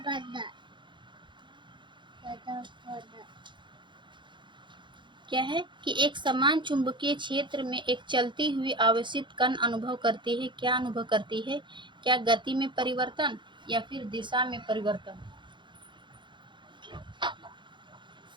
क्या है कि एक समान चुंबकीय क्षेत्र में एक चलती हुई आवेशित कण अनुभव करती है। क्या अनुभव करती है? क्या गति में परिवर्तन या फिर दिशा में परिवर्तन?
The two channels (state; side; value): late; left; 0.23 ms